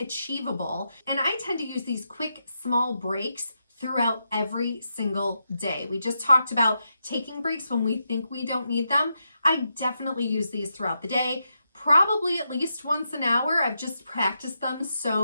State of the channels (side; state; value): both; inverted; correlation -0.84